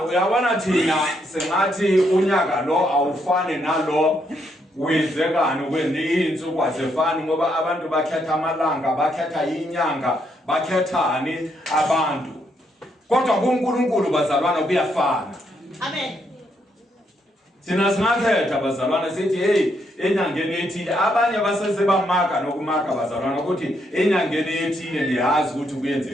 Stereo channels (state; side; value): normal; both; correlation 0.76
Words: uyabona thina sengathi unyaka lo awufane nalo wenzekani kwezinsuku azefani ngoba abantu bakhetha amalanga bakhetha inyanga bakhethani abantu kodwa kuNkulunkulu bazalwana kuyafana amen sina singathetha bazalwana sithi hey enyangeni ethile abanye basese bamaka nokumaka bazalwana ukuthi enyangeni ethile liyazi ukuthi